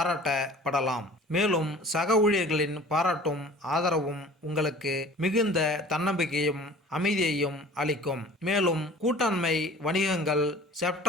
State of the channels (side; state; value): both; normal; correlation 0.46